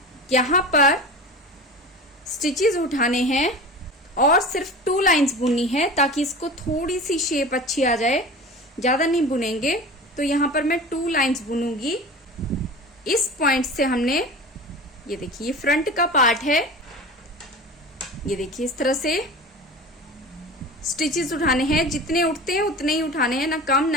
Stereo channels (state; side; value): normal; both; correlation 0.34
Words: यहाँ पर स्टिचेस उठाने हैं और सिर्फ 2 लाइंस बुननी है, ताकि इसको थोड़ी सी शेप अच्छी आ जाए, ज्यादा नहीं बुनेंगे। तो यहाँ पर मैं 2 लाइंस बुनूंगी। इस पॉइंट से हमने ये देखिए, ये फ्रंट का पार्ट है, ये देखिए इस तरह से स्टिचेस उठाने हैं। जितने उठते हैं उतने ही उठाने हैं, ना कम